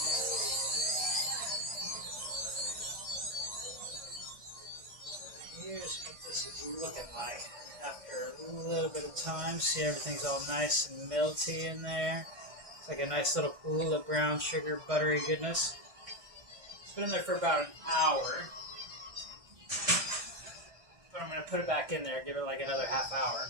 Here's what this is looking like after a little bit of time. See, everything's all nice and melty in there. It's like a nice little pool of brown sugar, buttery goodness. It's been in there for about an hour. But I'm going to put it back in there, give it like another half hour.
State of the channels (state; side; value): late; left; 1.6 ms